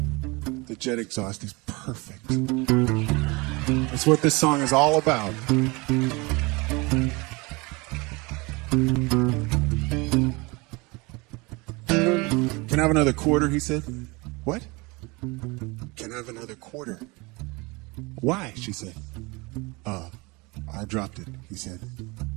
The jet exhaust is perfect. That's what this song is all about. Can I have another quarter, he said. What? Can I have another quarter? Why, she said. I dropped it, he said.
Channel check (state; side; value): quieter; left; 25.8 dB